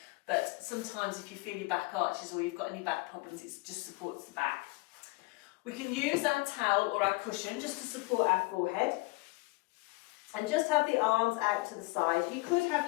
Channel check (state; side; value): quieter; right; 24.3 dB